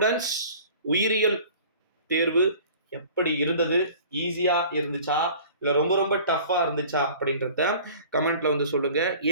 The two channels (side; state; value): both; inverted; correlation -0.46